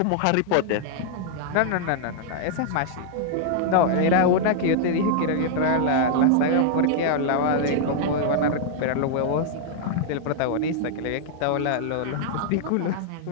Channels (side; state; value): both; different; correlation -0.01